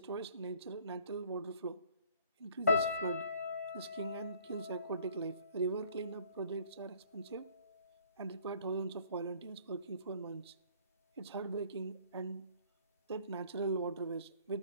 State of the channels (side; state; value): both; inverted; correlation -0.58